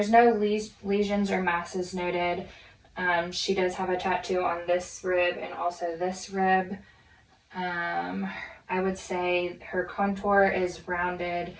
no lesions or masses noted. She does have a tattoo on this rib and also this rib. I would say her contour is rounded.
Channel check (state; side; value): identical; both; correlation 1.00